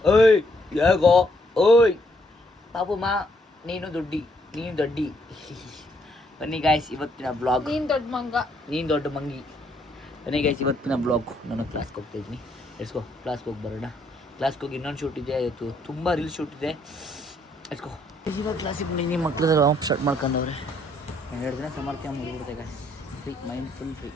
ಓಯ್ ಹೇಗೋ ಓಯ್ ಪಾಪು ಮಾ ನೀನು ದೊಡ್ಡಿ ಬನ್ನಿ ಗಾಯ್ಸ್ ಇವತ್ತಿನ ಬ್ಲಾಗ್. ನೀನು ದೊಡ್ಡ ಮಂಗಿ. ಬನ್ನಿ ಗಾಯ್ಸ್ ಇವತ್ತಿನ ಬ್ಲಾಗ್. ನಾನು ಕ್ಲಾಸ್ಗೆ ಹೋಗ್ತಾ ಇದ್ದೀನಿ. ಎಸ್ಕೋ ಕ್ಲಾಸ್ಗೆ ಹೋಗಿ ಬರೋಣ. ಕ್ಲಾಸ್ಗೆ ಹೋಗಿ ಇನ್ನೊಂದು ಶೂಟ್ ಇದೆ, ಇವತ್ತು ತುಂಬ ರೀಲ್ಸ್ ಶೂಟ್ ಇದೆ. ಎಸ್ಕೋ ಇವಾಗ ಕ್ಲಾಸಿಗೆ ಬಂದು ಮಕ್ಕಳು ಆಫ್ ಸ್ಟಾರ್ಟ್ ಮಾಡ್ಕೊಂಡವ್ರೆ. 2 ದಿನ ಸಮರ್ಥ್ಯ ಮುಗಿಬಿಡ್ತೆ guys. Free mind full free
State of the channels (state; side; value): normal; both; correlation 0.71